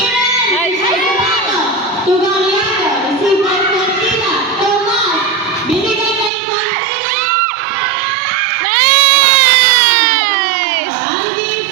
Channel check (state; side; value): drops out; left; at 6.3 s